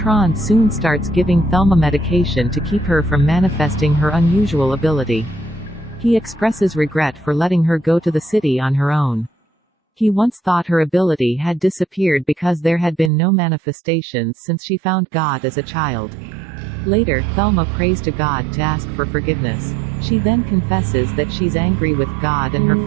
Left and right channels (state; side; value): drops out; left; at 13.1 s